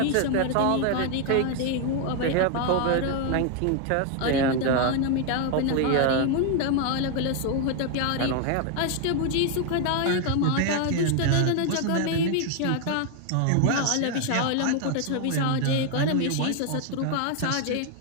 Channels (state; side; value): different; both; correlation 0.00